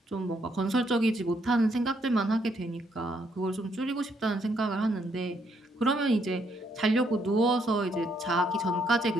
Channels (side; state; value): both; normal; correlation 0.73